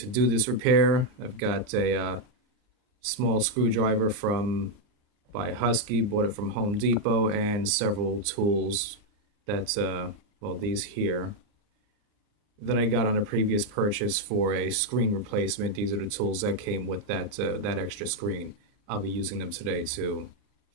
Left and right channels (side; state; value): left; late; 39 ms